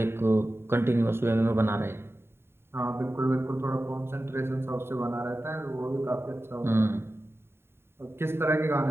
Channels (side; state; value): left; late; 0.11 ms